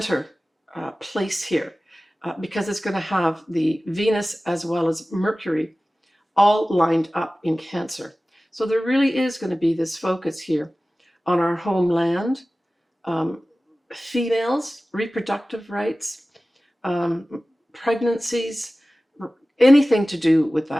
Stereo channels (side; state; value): both; normal; correlation 0.97